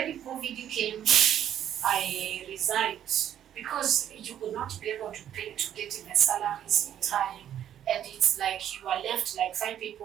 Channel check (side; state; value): left; quieter; 10.4 dB